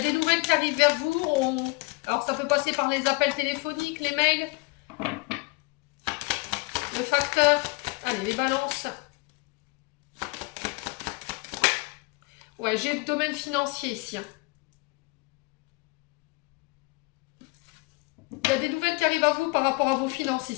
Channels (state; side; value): quieter; right; 26.3 dB